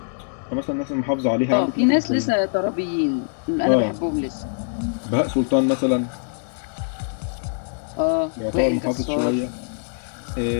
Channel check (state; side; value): silent; right; digital silence